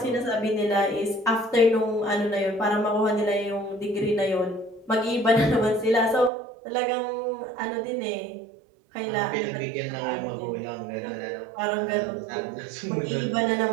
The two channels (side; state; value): left; drops out; at 6.3 s